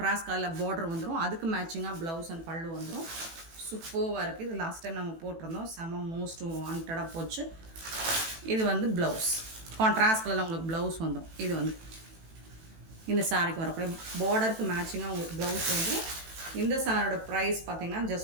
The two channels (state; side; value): late; left; 18 ms